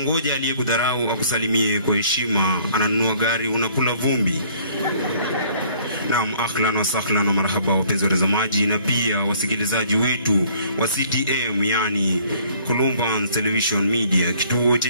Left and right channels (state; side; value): inverted; both; correlation -0.58